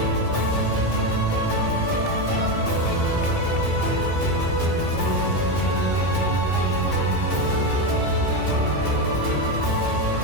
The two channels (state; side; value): late; right; 2.6 ms